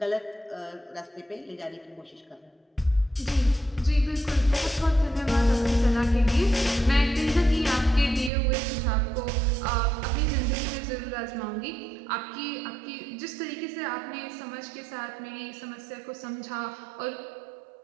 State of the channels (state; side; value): drops out; left; at 8.3 s